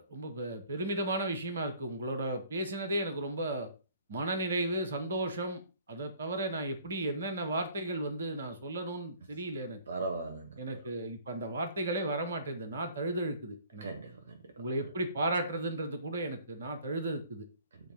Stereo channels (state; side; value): inverted; both; correlation -0.55